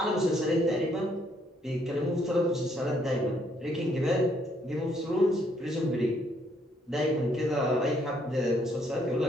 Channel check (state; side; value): normal; both; correlation 0.69